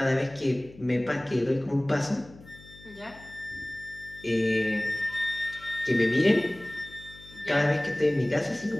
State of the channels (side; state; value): left; noise; hum, 21 dB below the sound